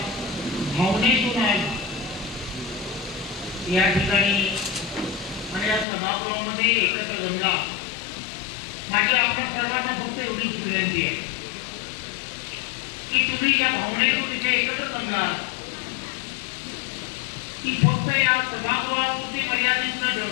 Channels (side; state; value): right; drops out; at 5.9 s